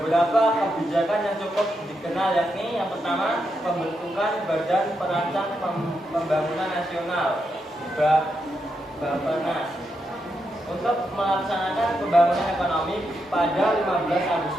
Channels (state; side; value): normal; both; correlation 0.83